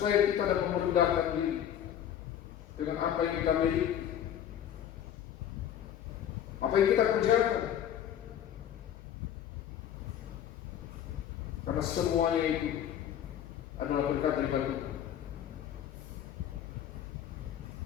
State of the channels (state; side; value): quieter; right; 10.1 dB